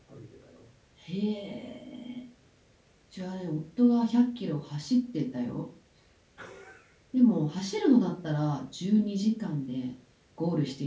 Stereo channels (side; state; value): both; identical; correlation 1.00